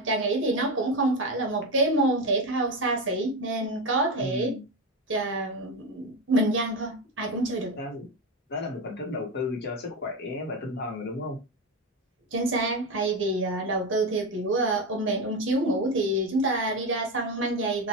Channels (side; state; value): both; normal; correlation 0.16